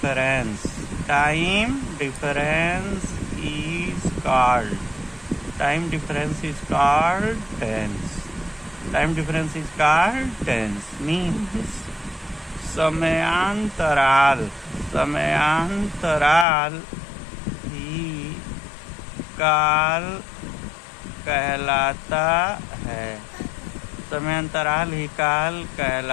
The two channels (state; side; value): drops out; right; at 16.4 s